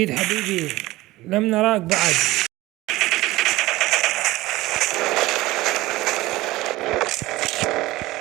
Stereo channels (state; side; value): quieter; left; 18.5 dB